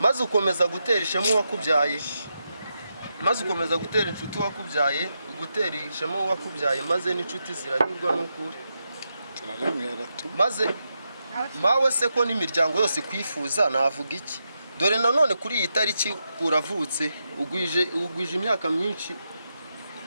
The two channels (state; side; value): inverted; both; correlation -0.86